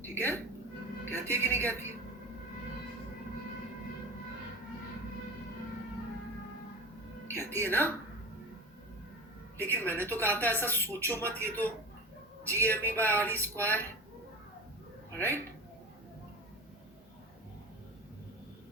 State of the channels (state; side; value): normal; both; correlation 0.31